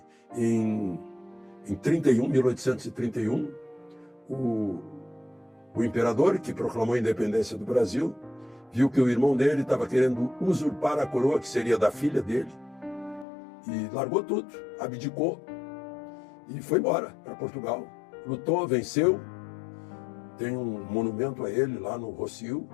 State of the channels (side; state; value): right; drops out; at 13.2 s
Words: em 1831, o imperador, que proclamou a independência do Brasil, viu que o irmão dele estava querendo usurpar a coroa, que seria da filha dele, e largou tudo, abdicou e foi embora para Portugal. Lutou, venceu, tem um monumento a ele lá no Rossio,